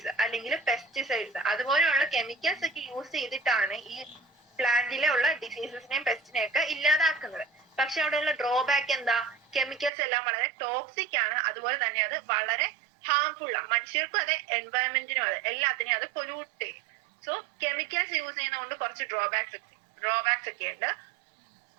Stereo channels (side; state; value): left; drops out; at 9.9 s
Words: അല്ലെങ്കിൽ പെസ്റ്റിസൈഡ്സ് അതുപോലെയുള്ള കെമിക്കൽസ് ഒക്കെ യൂസ് ചെയ്തിട്ടാണ് ഈ പ്ലാന്റിലെ ഉള്ള ഡിസീസസിനെയും പെസ്റ്റിനെയും ഒക്കെ ഇല്ലാതാക്കുന്നത്. പക്ഷെ അവിടെയുള്ള ഡ്രോബാക്ക് എന്താ, കെമിക്കൽസ് എല്ലാം വളരെ ടോക്സിക് ആണ്, അതുപോലെ തന്നെ അത് വളരെ ഹാർംഫുൾ ആണ്. മനുഷ്യർക്കും അതെ, എൻവയറമെന്റിനും അതെ, എല്ലാത്തിനെയും അത് പൊല്യൂട്ട് ചെയ്യും. സോ കെമിക്കൽസ് യൂസ് ചെയ്യുന്നതുകൊണ്ട് കുറച്ച് ഡ്രോബാക്സ് ഒക്കെ ഉണ്ട്.